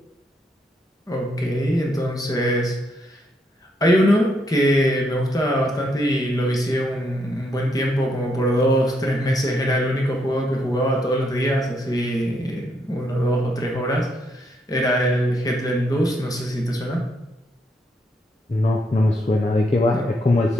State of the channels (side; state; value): both; normal; correlation 0.76